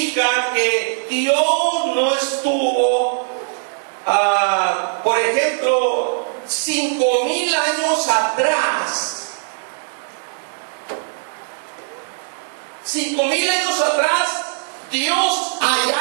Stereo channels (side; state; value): left; silent; digital silence